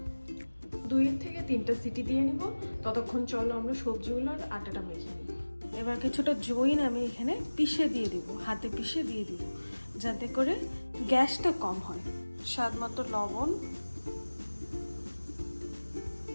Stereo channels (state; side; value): inverted; both; correlation -1.00